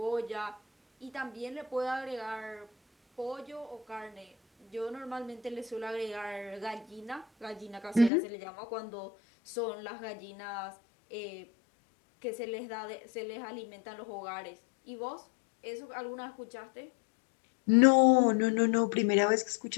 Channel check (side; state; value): right; drops out; at 8.1 s